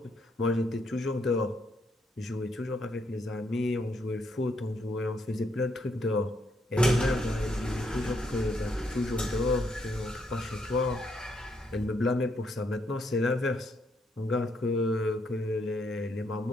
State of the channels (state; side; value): normal; both; correlation 0.74